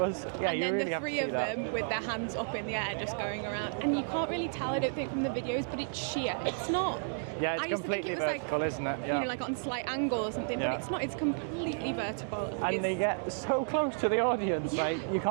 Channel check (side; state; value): left; silent; digital silence